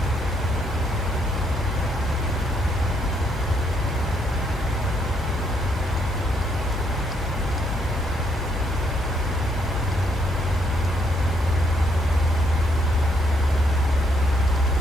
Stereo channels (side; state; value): both; normal; correlation 0.72